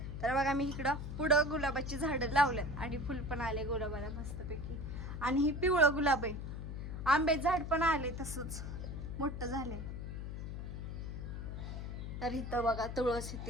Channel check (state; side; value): noise; left; hum, 6 dB below the sound